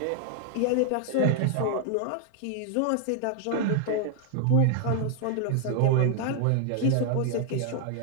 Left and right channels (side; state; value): both; different; correlation 0.00